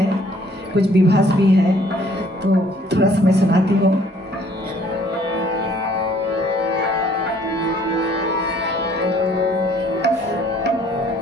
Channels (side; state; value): both; normal; correlation 0.60